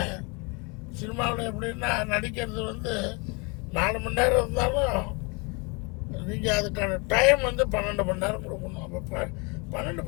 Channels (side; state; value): right; quieter; 30.6 dB